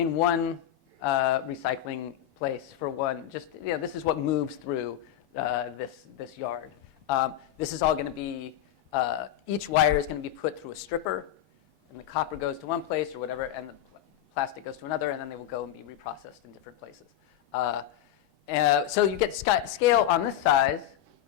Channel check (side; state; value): right; quieter; 11.4 dB